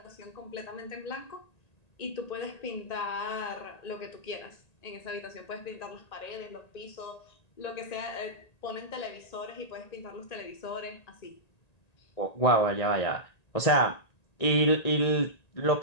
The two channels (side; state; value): right; late; 1.9 ms